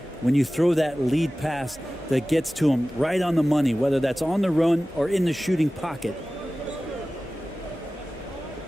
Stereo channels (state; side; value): normal; both; correlation 0.96